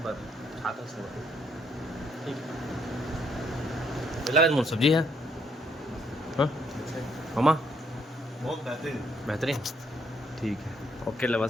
बस खाता संगवारी ठीक है लगा सब्जी है हाँ मम्मा बहुत बेहतरीन ठीक है ओके लवा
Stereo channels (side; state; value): both; normal; correlation 0.71